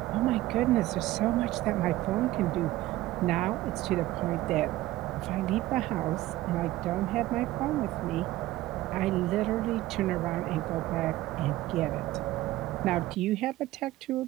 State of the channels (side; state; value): left; quieter; 16.5 dB